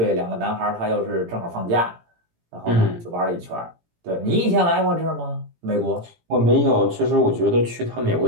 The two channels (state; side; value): late; left; 18 ms